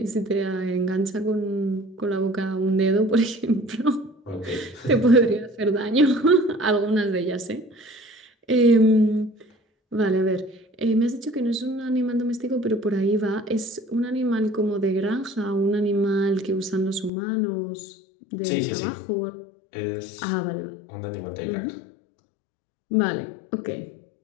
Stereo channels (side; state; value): right; drops out; at 17.1 s